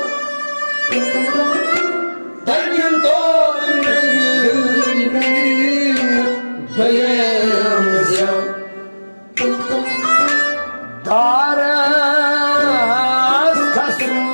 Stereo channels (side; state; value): both; inverted; correlation -1.00